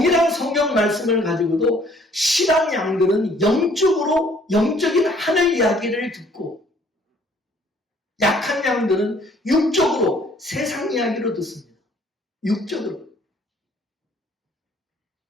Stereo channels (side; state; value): both; normal; correlation 0.60